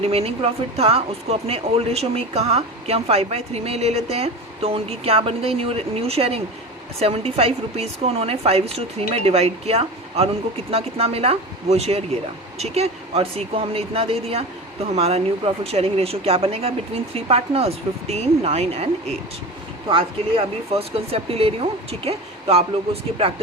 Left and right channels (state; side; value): normal; both; correlation 0.29